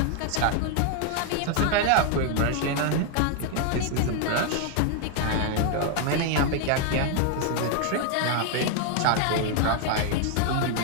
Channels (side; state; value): both; different; correlation 0.00